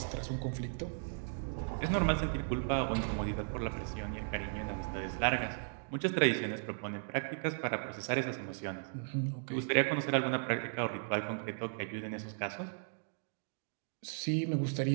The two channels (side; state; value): left; silent; digital silence